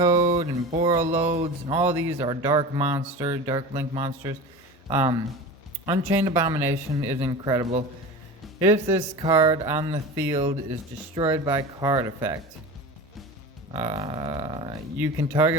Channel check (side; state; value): both; normal; correlation 0.31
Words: and borrow loads, and all these are Dark Link monsters. Unchained Abomination is incredible. If this card on the field is destroyed by card effect, you can